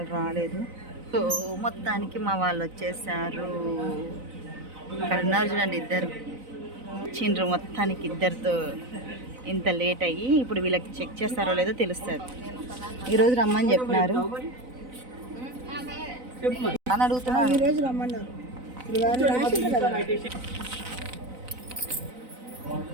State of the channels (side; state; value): left; late; 4.0 ms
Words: రాలేదు. సో మొత్తానికి మా వాళ్ళు వచ్చేసారు. ఇక్కడ ఉన్నారు చూడండి, ఇద్దరు చిండ్రు. మొత్తానికి ఇద్దరితో ఇంత లేట్ అయ్యి ఇప్పుడు వీళ్ళకి చెక్ చేస్తారో లేదో తెలుస్తుంది. ఈరోజు రమ్మని చెప్పినారు అని అడుగుతున్నారు. ఈరోజు రమ్మన్నారు.